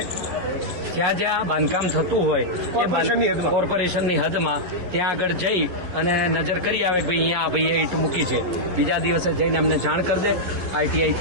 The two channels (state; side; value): late; left; 11 ms